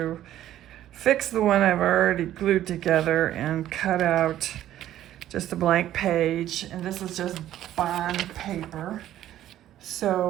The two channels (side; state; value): left; quieter; 12.6 dB